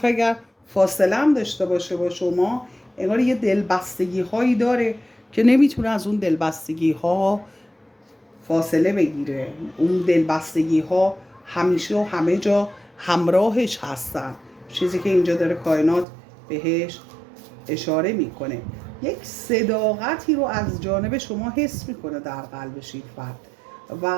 اگر فاصله هم داشته باشه با شما، انگار یه دلبستگی هایی داره که نمیتونه از اون دلبستگی ها فاصله بگیره. اون دلبستگی ها همیشه و همه جا همراهش هستن، چیزی که اینجا داره کائنات بهش اشاره میکنه. یک صداقتی رو از جانب شما حس میکنه در قلبش این فرد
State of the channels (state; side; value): drops out; left; at 16.1 s